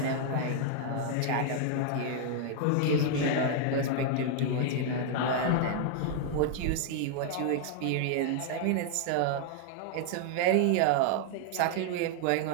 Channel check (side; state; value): both; different; correlation 0.00